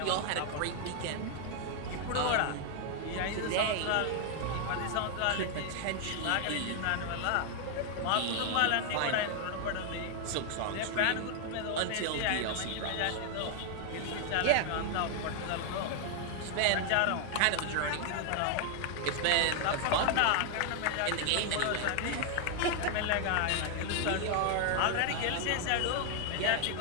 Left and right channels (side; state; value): both; different; correlation 0.00